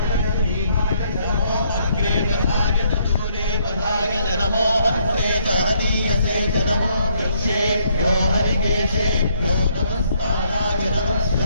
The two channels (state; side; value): inverted; both; correlation -0.70